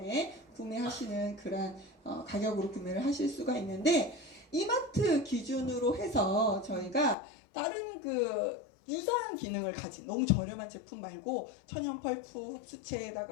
구매하시는 그런 가격으로 구매를 하실 수가 있는데, 이마트 기준으로 해서 저희가 다른 그 유사한 기능을 가진 너무 저렴한 제품 말고 천연 펄프,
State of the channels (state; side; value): drops out; right; at 7.2 s